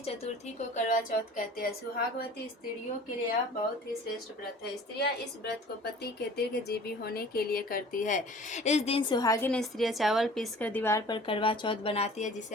चतुर्थी को करवा चौथ कहते हैं। सुहागवती स्त्रियों के लिए यह बहुत ही श्रेष्ठ व्रत है। स्त्रियां इस व्रत को पति के दीर्घजीवी होने के लिए करती है। इस दिन सुहागिन स्त्रियां चावल पीसकर दीवार पर करवा चौथ बनाती है,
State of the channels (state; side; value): normal; both; correlation 0.46